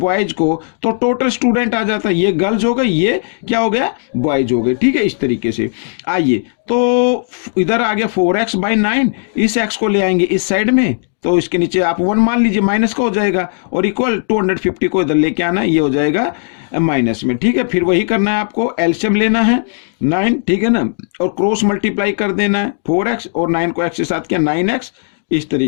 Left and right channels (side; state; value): right; silent; digital silence